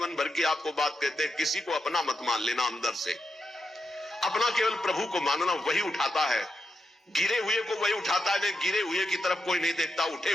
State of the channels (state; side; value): normal; both; correlation 0.85